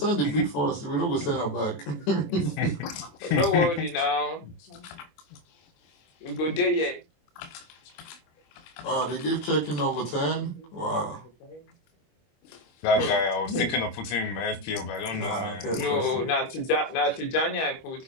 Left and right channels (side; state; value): right; late; 23 ms